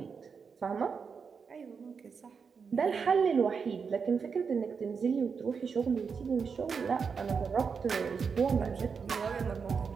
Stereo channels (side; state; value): left; quieter; 5.8 dB